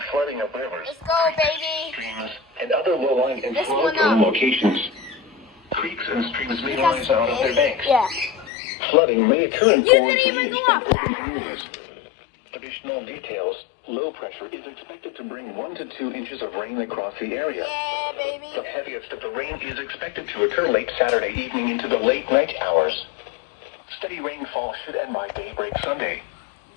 flooding of rivers, Let's go, baby! streams, and other low-lying and This flood-prone one up. locations. Creeks and streams may rise out of their banks. Yeah. Flooding may occur in You forest didn't even drainage go and up. urban areas. Additional details. Low pressure is expected to bring 1 to 2 inches of rain across the area. Yeah, baby. The heaviest of the rain is expected to occur late Saturday evening into the late night hours. Steady rainfall should end by daybreak Sunday.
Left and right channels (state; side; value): drops out; right; at 8.5 s